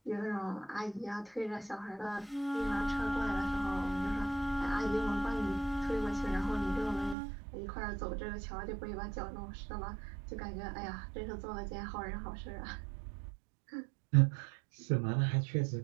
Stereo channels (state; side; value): drops out; left; at 7.2 s